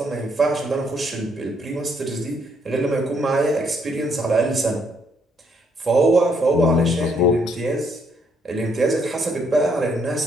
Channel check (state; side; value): normal; both; correlation 0.71